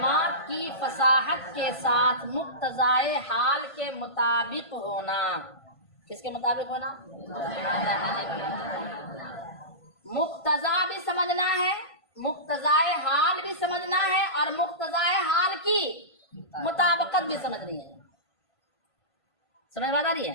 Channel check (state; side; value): late; right; 1.5 ms